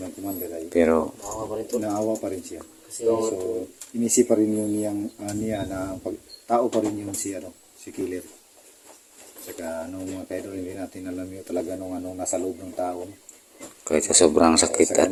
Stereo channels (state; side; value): identical; both; correlation 1.00